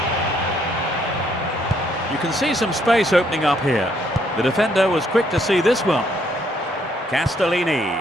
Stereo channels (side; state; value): both; normal; correlation 0.69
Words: You can see some space opening up here. The defender was quick to see this one.